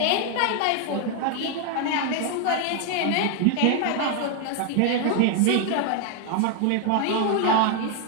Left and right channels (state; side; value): different; both; correlation 0.01